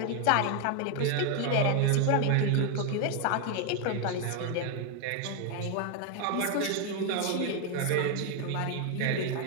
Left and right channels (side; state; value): both; different; correlation 0.01